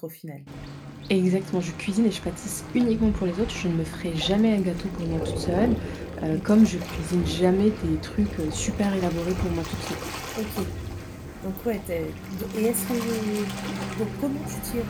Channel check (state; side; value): identical; both; correlation 1.00